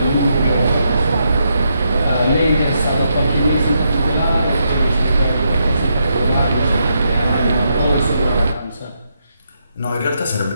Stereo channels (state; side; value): inverted; both; correlation -0.80